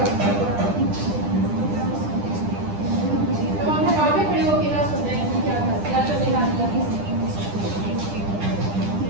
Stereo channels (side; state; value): left; late; 10 ms